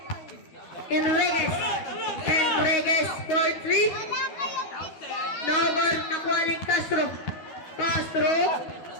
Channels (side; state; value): right; late; 13 ms